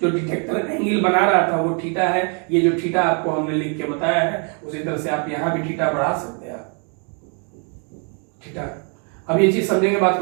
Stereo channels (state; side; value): quieter; left; 39.0 dB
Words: जो डिटेक्टर एंगल बना रहा था वो थीटा है। ये जो थीटा आपको हमने लिख के बताया है उसी तरह से आप यहां भी थीटा बढ़ा सकते हैं, थीटा। अब ये चीज समझेंगे बात